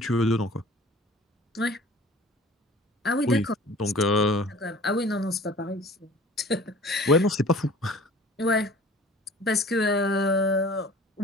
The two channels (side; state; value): both; normal; correlation 0.46